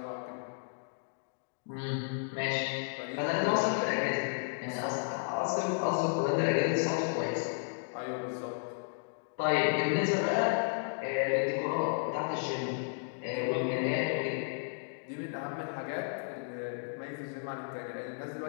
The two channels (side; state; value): right; silent; digital silence